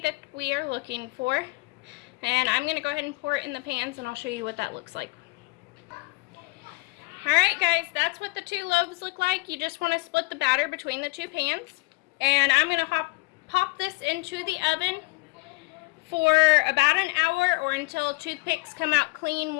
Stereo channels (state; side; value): quieter; right; 25.3 dB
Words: we are looking for. And I'm going to go ahead and pour it in the pans and I'll show you what that looks like. Alright guys, that's what the 2 loaves look like. You just want to split the batter between the 2 pans. And I'm going to pop this into the oven for about an hour or until toothpicks come out clean